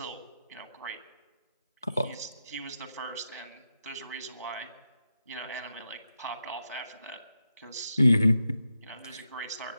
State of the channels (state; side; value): inverted; both; correlation -0.87